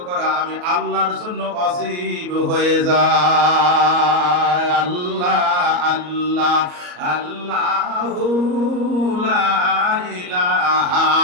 করা আমি আল্লাহর জন্য ওয়াজিব হয়ে যায়। আল্লাহ আল্লাহ আল্লাহু লা ইলাহা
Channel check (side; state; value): left; late; 34 ms